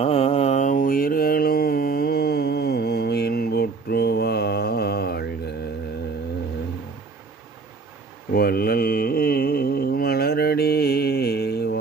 உயிர்களும் இன்புற்று வாழ்க, வள்ளல் மலரடி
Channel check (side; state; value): left; quieter; 4.3 dB